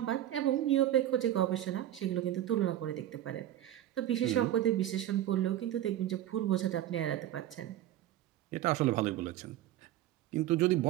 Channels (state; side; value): quieter; left; 12.7 dB